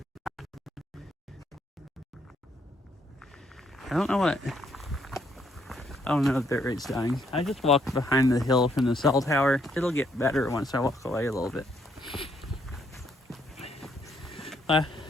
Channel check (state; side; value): normal; both; correlation 0.72